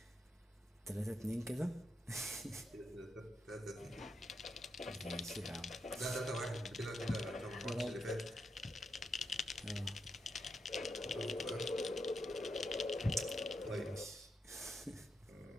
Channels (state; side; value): normal; both; correlation 0.84